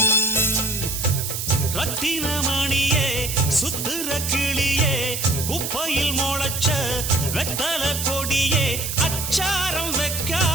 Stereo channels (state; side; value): noise; right; hiss, 4 dB below the sound